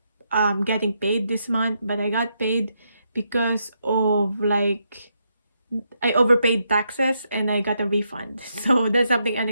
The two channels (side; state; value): both; inverted; correlation -0.80